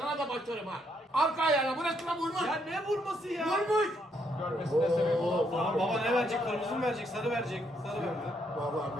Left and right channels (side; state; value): both; normal; correlation 0.74